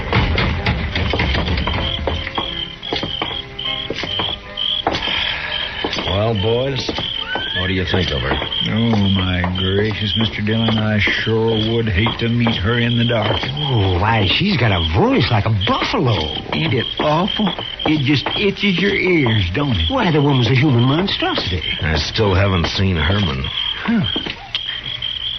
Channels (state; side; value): identical; both; correlation 1.00